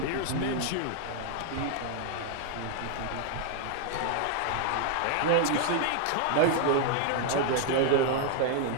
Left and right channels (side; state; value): both; different; correlation 0.00